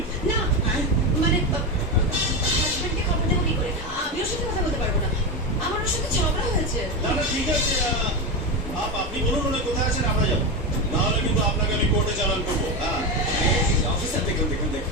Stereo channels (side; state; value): both; normal; correlation 0.16